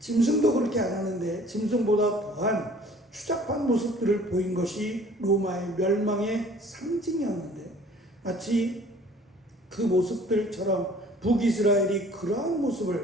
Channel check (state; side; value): normal; both; correlation 0.52